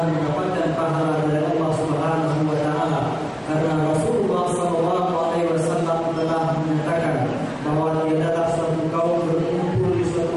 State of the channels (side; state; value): both; identical; correlation 1.00